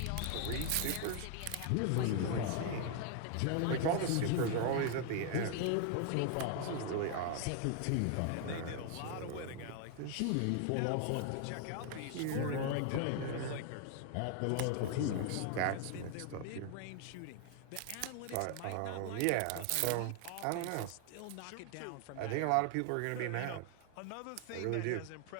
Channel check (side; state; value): both; different; correlation 0.00